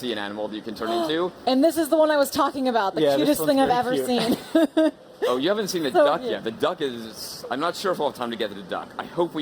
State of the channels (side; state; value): both; identical; correlation 1.00